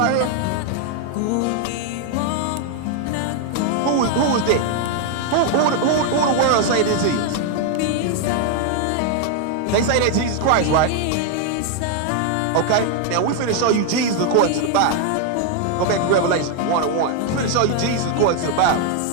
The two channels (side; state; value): both; different; correlation 0.00